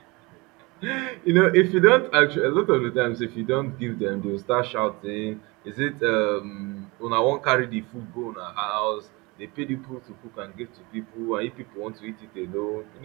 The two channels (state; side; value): quieter; left; 25.1 dB